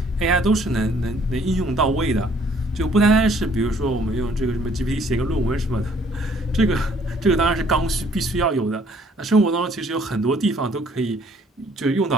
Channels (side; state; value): both; normal; correlation 0.61